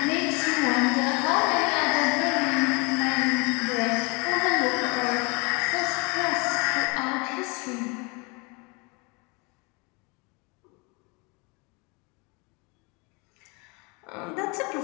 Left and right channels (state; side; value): quieter; right; 29.7 dB